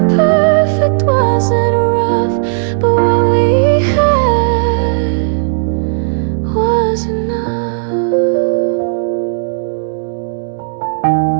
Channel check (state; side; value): silent; left; digital silence